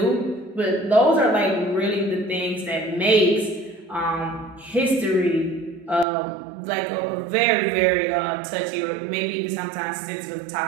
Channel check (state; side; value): drops out; left; at 6.1 s